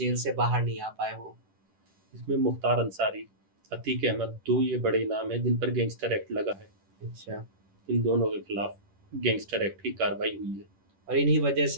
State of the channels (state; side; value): late; left; 10 ms